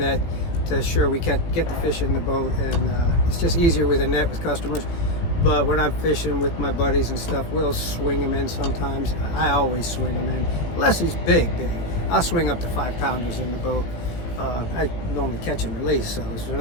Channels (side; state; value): right; late; 18 ms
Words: to assure we get the fish in the boat, and it's just easier with a net with customers. But when I'm fishing with my buddies and stuff, we'll swing them in sometimes. I always swing them in, unless he's big. I'll swing up to 5-pounders in the boat. I normally catch and release, so if they're